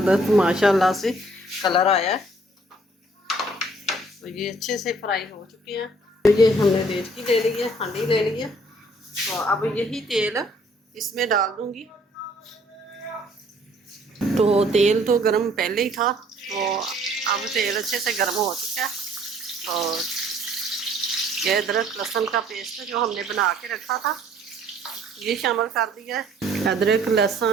माशाल्लाह से कलर आया है। तो ये अच्छे से फ्राई हो चुके हैं। तो ये हमने देचकी ले ली है, हांडी ले ली है। तो अब यही तेल इसमें डाल दूंगी। तो तेल तो गर्म पहले ही था, तो अब तेल अच्छे से गर्म हो चुका है। तो ये अदरक लहसुन का पेस्ट जो हमने बना के रखा था ये शामिल कर दिया है। अदरक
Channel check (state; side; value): normal; both; correlation 0.60